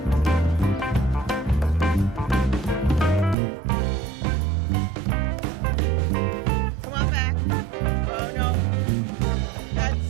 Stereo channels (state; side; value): drops out; left; at 3.4 s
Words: Come on back. Oh no. That's,